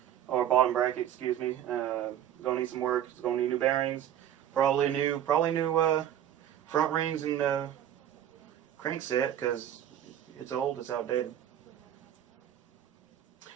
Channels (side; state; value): left; quieter; 10.9 dB